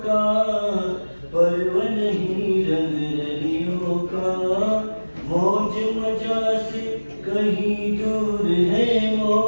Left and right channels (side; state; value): both; inverted; correlation -1.00